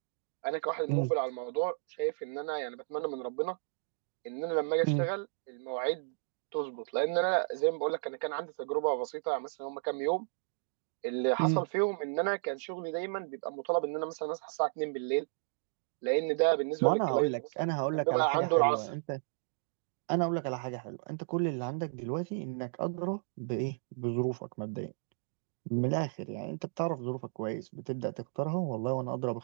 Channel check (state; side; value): silent; left; digital silence